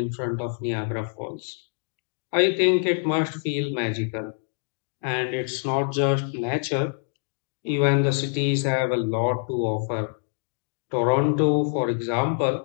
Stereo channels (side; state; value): right; silent; digital silence